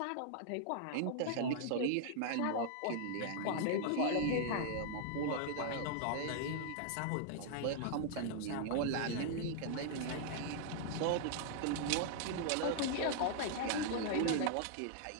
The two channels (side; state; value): both; different; correlation -0.01